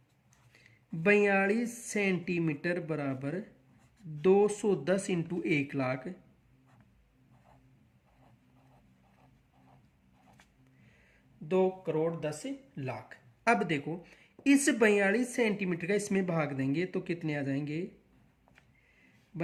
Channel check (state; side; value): identical; both; correlation 1.00